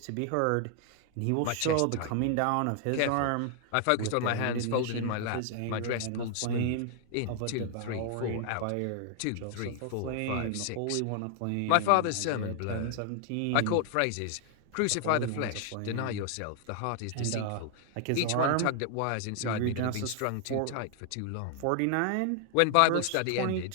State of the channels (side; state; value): both; different; correlation 0.00